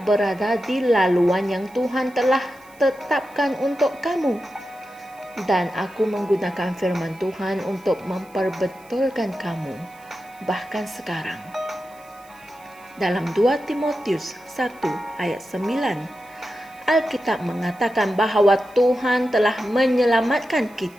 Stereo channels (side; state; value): right; noise; hiss, 27 dB below the sound